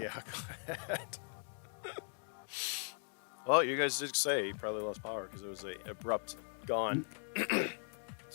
go ahead. Well, you guys did say he probably lost power because it was a abrupt gone.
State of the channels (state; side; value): silent; right; 52 dB below the other